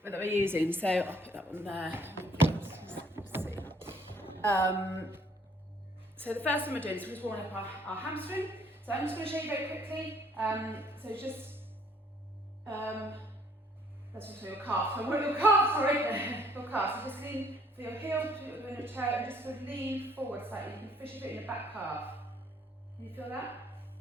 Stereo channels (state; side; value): normal; both; correlation 0.62